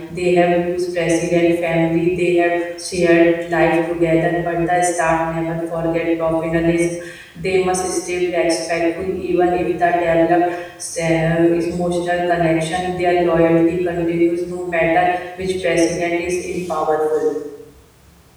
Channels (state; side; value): identical; both; correlation 1.00